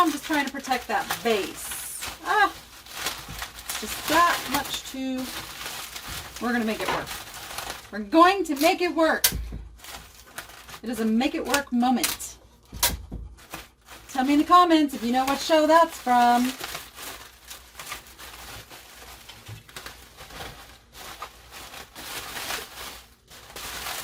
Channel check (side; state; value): both; identical; correlation 1.00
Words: I'm just trying to protect that base. Just that much too. We're going to make it work. We're going to make it work. It is a make it work moment. Tell me in the comments if you know what show that's from.